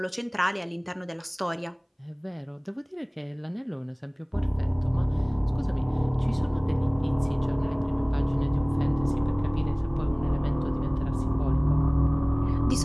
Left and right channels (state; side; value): identical; both; correlation 1.00